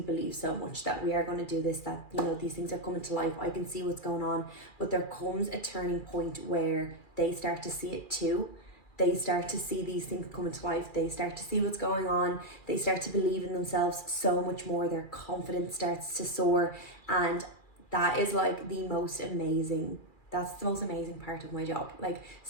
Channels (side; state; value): right; late; 2.4 ms